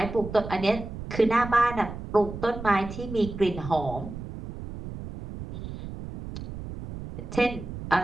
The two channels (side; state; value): right; noise; rumble, 10 dB below the sound